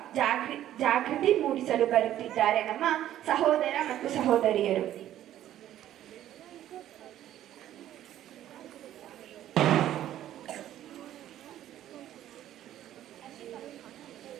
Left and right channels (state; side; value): quieter; left; 12.4 dB